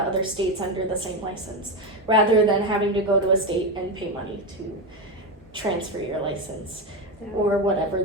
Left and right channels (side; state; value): both; normal; correlation 0.14